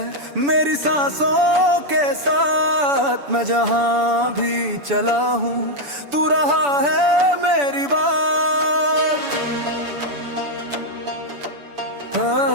मेरी सांसों के साथ, मैं जहां भी चला हूँ तू रहा है मेरी बात।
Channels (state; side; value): late; left; 7.0 ms